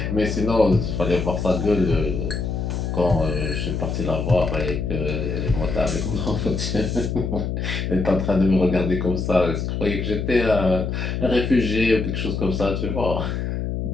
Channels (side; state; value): left; noise; hum, 2 dB below the sound